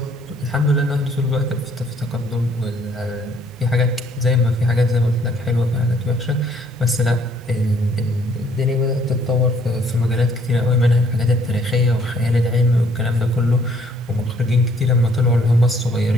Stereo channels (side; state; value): both; normal; correlation 0.63